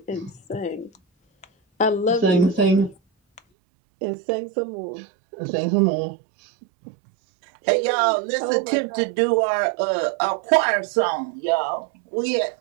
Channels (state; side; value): drops out; left; at 3.4 s